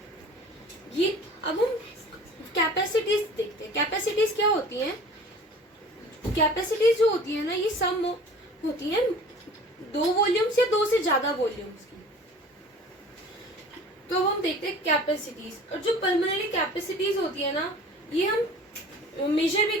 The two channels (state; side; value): normal; both; correlation 0.44